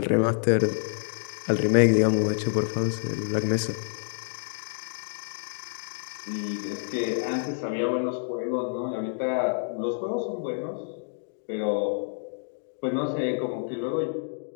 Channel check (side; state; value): right; silent; digital silence